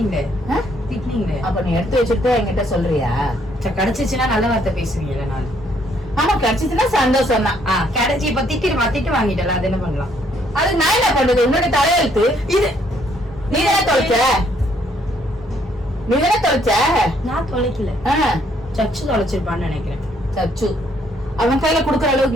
அப்ப நீ எடுத்து வச்சுட்டு என்கிட்ட சொல்றியா? கிடைச்சிச்சுன்னா நல்ல வார்த்தை பேசுவீங்கல்ல நான். ஆமா, கிடைச்சிச்சுன்னா சந்தோஷம் தான். கிடைச்சி இப்ப திட்டு வாங்கிட்டல, அது என்ன பண்ணலாம்? அது நான் என்ன பண்றது? உன்னோட தலையெழுத்து இது. நீதானே தொலைச்ச. நான் தொலைக்கல. சச்சு தொலைச்சிருப்பான்னு நினைக்கிறேன். சச்சு அவன் கையில குடுக்கற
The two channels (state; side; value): normal; both; correlation 0.68